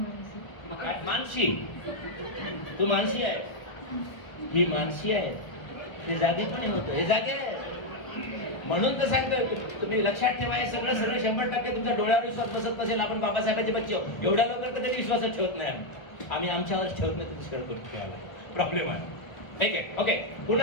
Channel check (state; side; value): late; right; 1.4 ms